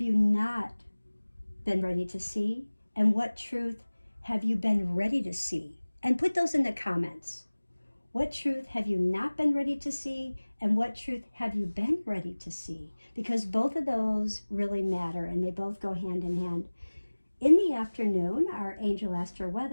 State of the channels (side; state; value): both; inverted; correlation -1.00